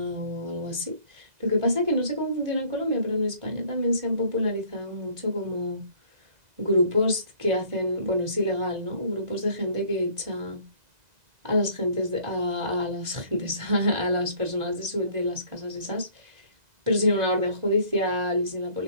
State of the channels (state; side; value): late; left; 2.0 ms